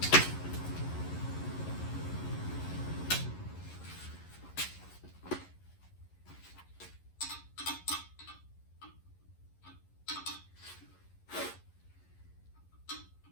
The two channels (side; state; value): right; late; 11 ms